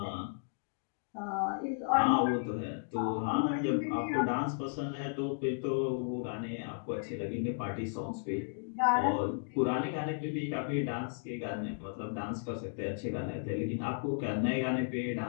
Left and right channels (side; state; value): right; silent; digital silence